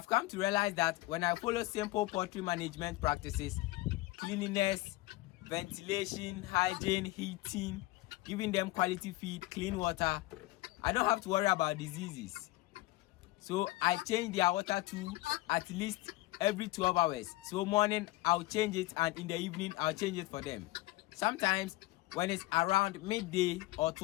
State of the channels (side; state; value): right; quieter; 19.5 dB